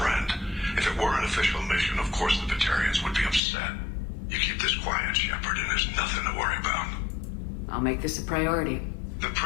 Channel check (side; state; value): right; drops out; at 3.4 s